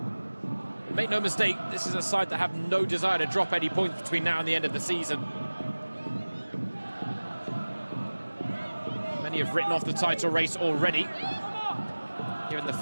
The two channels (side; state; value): both; inverted; correlation -1.00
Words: Make no mistake, this is a side that have no desire to drop any points between now and the end of the season. Many have written off the title race already, given the